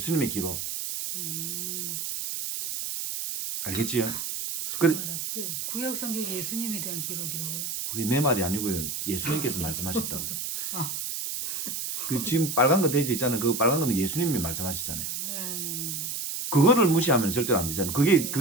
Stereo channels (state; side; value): noise; right; hiss, 4 dB below the sound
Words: 기록. 알겠지요? 그래, 알았지? 구약 성경 예수님에 대한 기록이라고요? 그게 내 말이 아니고요. 예수님께서 말씀하셨다고요. 아. 그 지금 빨간 거 돼지 있잖아요. 그 빨간 거는 예수님이 말씀하셨잖아요. 네. 그거를 무시하면 절대로 안 되잖아요. 그게